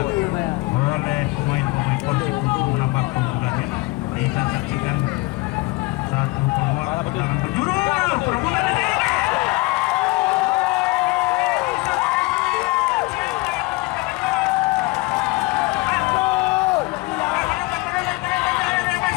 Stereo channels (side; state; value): right; quieter; 23.2 dB